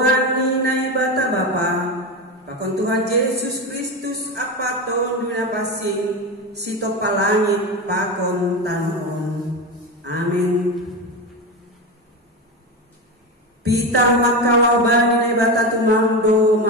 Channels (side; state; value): both; normal; correlation 0.19